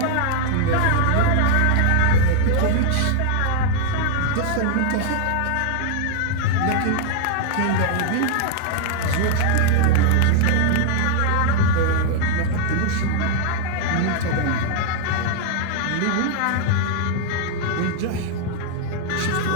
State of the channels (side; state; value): both; different; correlation 0.00